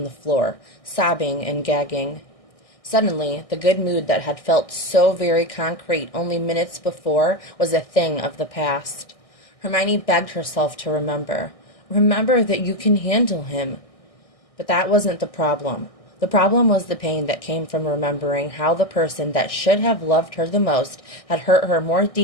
the floor, sobbing and gagging. Suddenly, the good mood that had felt so very concrete only minutes before was a thing of the past. Hermione begged herself to remember. Remember that you can handle him. But that wasn't the problem. The problem was the pain that came from remembering how the person that should have loved her the most had hurt her more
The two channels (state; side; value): late; right; 1.6 ms